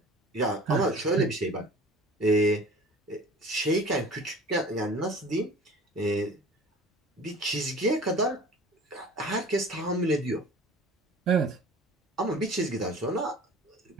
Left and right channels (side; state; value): both; normal; correlation 0.43